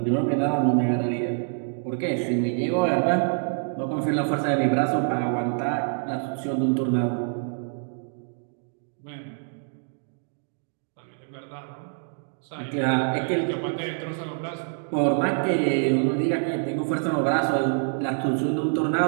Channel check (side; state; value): left; silent; 61 dB below the other